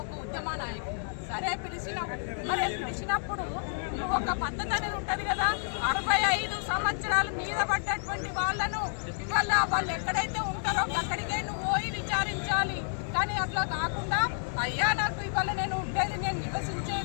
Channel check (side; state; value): right; silent; digital silence